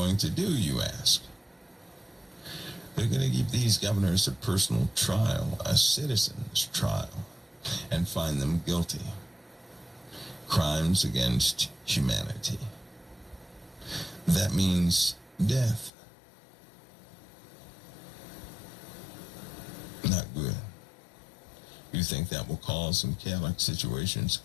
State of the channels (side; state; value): right; drops out; at 15.9 s